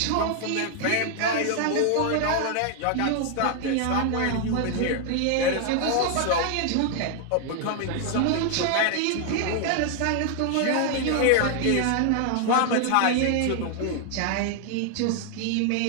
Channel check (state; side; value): different; both; correlation 0.00